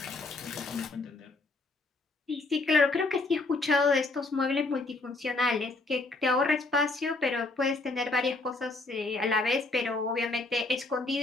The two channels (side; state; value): right; quieter; 3.3 dB